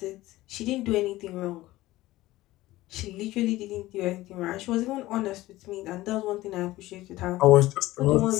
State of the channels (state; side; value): quieter; right; 17.3 dB